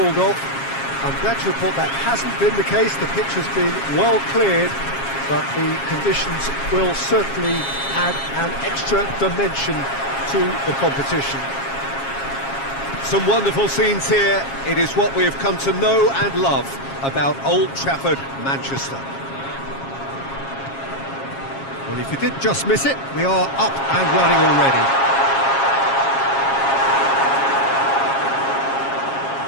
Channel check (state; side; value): late; right; 7.4 ms